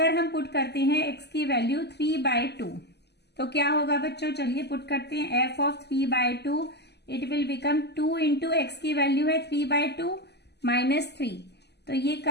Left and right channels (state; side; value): late; right; 0.49 ms